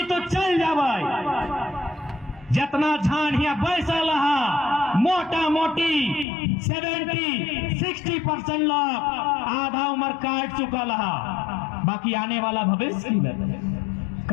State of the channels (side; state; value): right; drops out; at 6.2 s